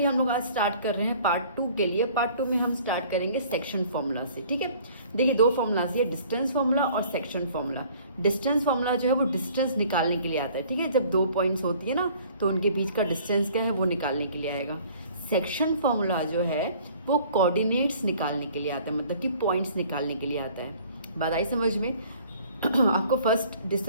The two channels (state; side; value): inverted; both; correlation -0.53